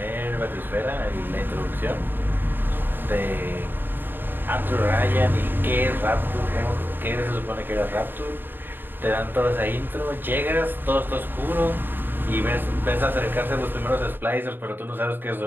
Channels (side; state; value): left; late; 0.094 ms